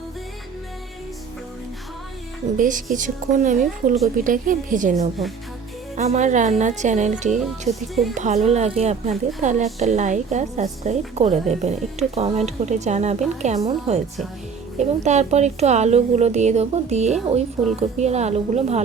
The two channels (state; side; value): quieter; left; 5.7 dB